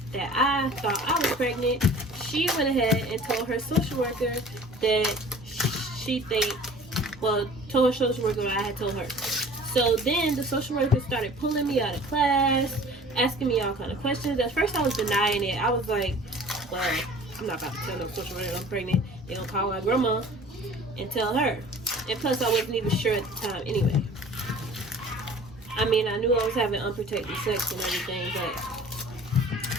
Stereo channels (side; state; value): both; normal; correlation 0.46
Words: that I thought I was pregnant, she went ahead and told her social worker that told her social worker what I had told her. So then the social worker started pulling me out of class, asking me all kind of questions. At first I was denying it. I was like, well, I'm not about to tell no social worker I'm pregnant. They're gonna call my grandma and tell her. And plus I wasn't even sure at the time anyway. I mean, I knew I was having unprotected sex and everything, but